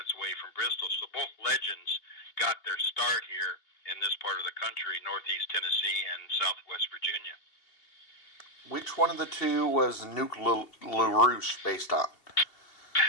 away from Bristol. So both legends got their start here in this part of the country, northeast Tennessee and southwest Virginia. Which one of the two was Nuke LaRouche based on?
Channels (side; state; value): right; late; 2.8 ms